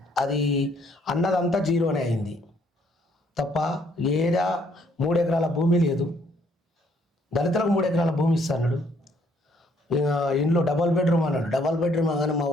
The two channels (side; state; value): both; normal; correlation 0.66